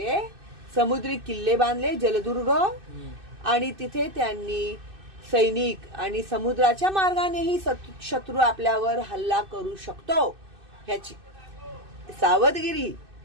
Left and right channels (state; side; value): late; left; 2.6 ms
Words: समुद्री किल्ले बांधले, जलदुर्ग, आणि तिथे त्यांनी सैनिक आणि समुद्राच्या मार्गानेही शत्रू आपल्यावर हल्ला करू शकतो ह्याची सावधगिरी